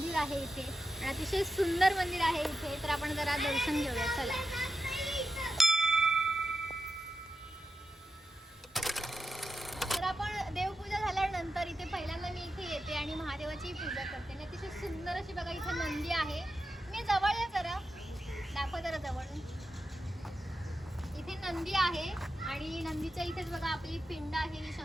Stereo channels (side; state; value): both; normal; correlation 0.89